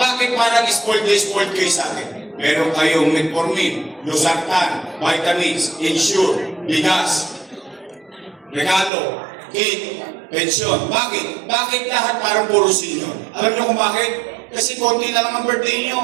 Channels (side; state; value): left; drops out; at 8.9 s